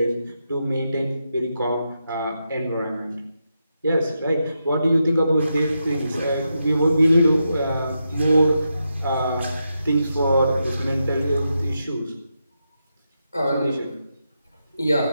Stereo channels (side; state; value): both; inverted; correlation -0.85